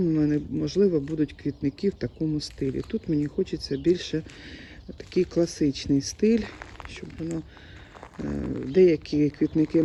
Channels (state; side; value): identical; both; correlation 1.00